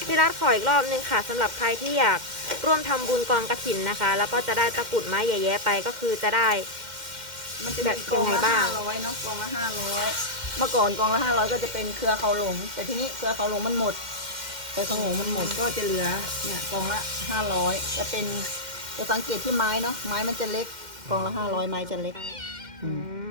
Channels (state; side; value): late; left; 2.1 ms